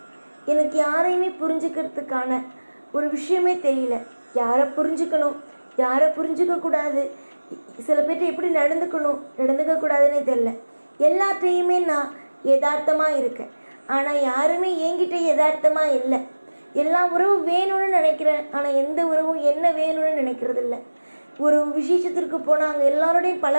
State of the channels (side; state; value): both; inverted; correlation -1.00